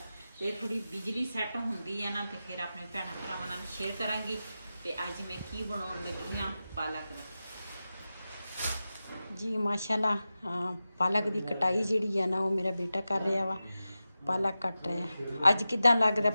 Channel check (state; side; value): inverted; both; correlation -0.93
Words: तो थोड़ी बिजली सैट होंदी है ना तो फिर अपने भैणां भरावां नाल शेयर करांगी। तो अज मैं की बनाउण लगी हाँ पालक जी। माशाल्लाह पालक की कटाई जिहड़ी है ना वो मेरा बेटा कर रहा वा, पालक कट रहा। अज किदां लगदा